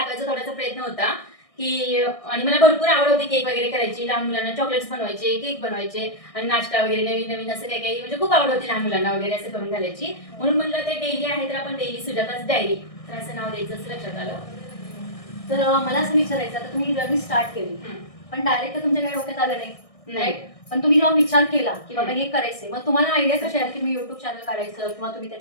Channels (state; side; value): late; right; 1.6 ms